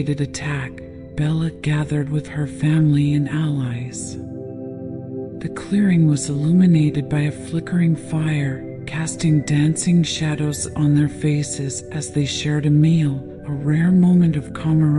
attack, Bella gathered with her family and allies. The clearing was illuminated by a flickering fire, casting dancing shadows on their faces as they shared a meal, a rare moment of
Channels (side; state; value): both; identical; correlation 1.00